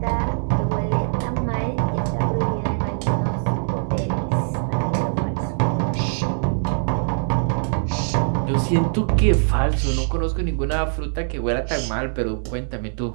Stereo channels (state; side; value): silent; left; digital silence